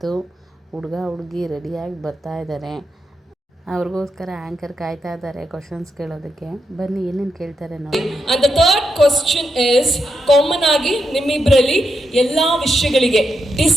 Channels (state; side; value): normal; both; correlation 0.84